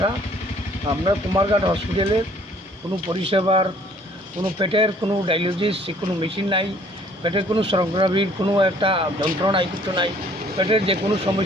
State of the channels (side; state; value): both; normal; correlation 0.58